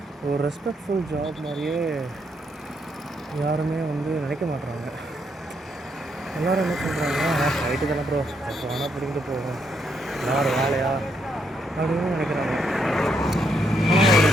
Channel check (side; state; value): both; normal; correlation 0.76